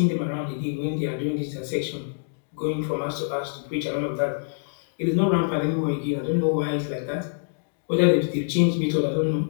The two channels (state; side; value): silent; right; digital silence